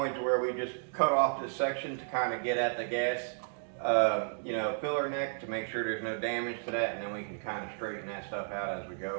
where we just cut off this section to kind of get at the gas filler neck to make sure there's no damage to that, and then we can kind of straighten that stuff out as we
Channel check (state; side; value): silent; left; digital silence